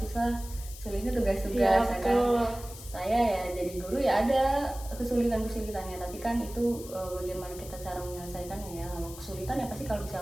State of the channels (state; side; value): noise; left; hiss, 15 dB below the sound